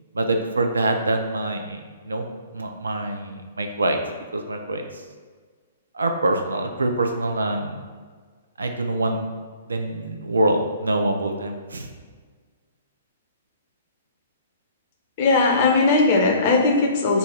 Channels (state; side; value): inverted; both; correlation -0.57